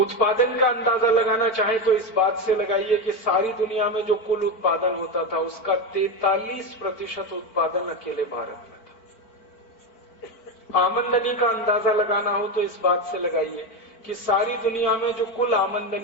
का अंदाजा लगाना चाहें तो इस बात से लगाइए कि सारी दुनिया में जो कुल उत्पादन होता था उसका 43% उत्पादन अकेले भारत में था। आमदनी का अंदाजा लगाना हो तो इस बात से लगाइए कि सारी दुनिया में जो कुल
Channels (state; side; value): late; right; 4.5 ms